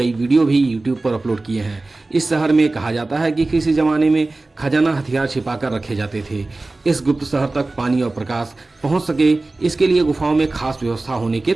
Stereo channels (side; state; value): left; quieter; 3.2 dB